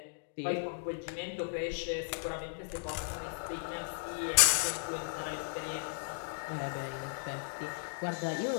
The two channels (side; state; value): right; silent; digital silence